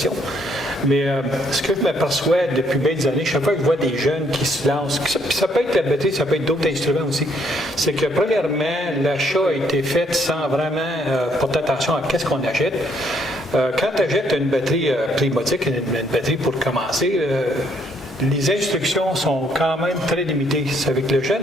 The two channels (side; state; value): both; normal; correlation 0.69